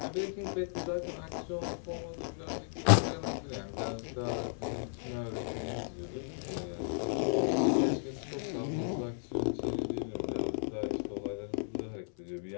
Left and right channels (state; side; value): silent; right; 55 dB below the other